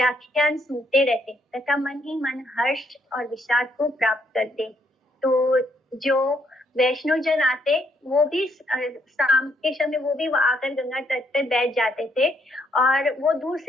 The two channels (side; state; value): both; normal; correlation 0.72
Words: सुनते रहते तथा मन ही मन हर्ष और विषाद को प्राप्त करते। तो जो वैष्णव जन आते वो भी शाम के समय वो भी आकर गंगा तट पर बैठ जाते थे और वो दूर